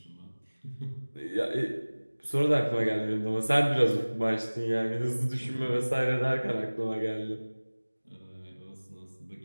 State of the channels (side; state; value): both; inverted; correlation -1.00